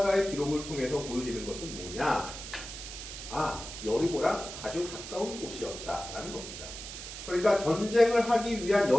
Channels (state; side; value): noise; right; hiss, 10 dB below the sound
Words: 기록을 통해서 보여지는 것은 뭐냐? 여리고랑 아주 가까운 곳이었다라는 겁니다. 그러니까 전쟁을 하기 위한